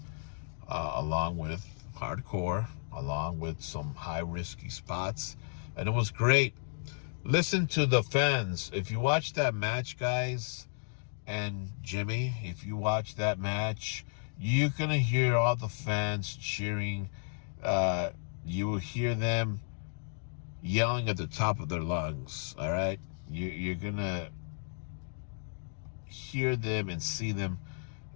along with hardcore, along with some high risky spots, and it was great. Listen to the fans. If you watch that match, guys, and Jimmy, if you watch that match, you're gonna hear all the fans cheering. You will hear them yelling at the top of their lungs, all right? You're going to hear them and see them.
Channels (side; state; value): right; silent; 56 dB below the other